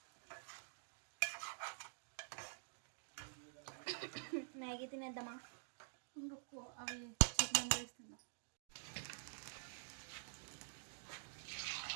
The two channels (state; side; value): silent; left; digital silence